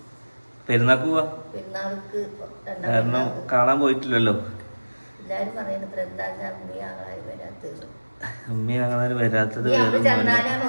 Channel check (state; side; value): inverted; both; correlation -1.00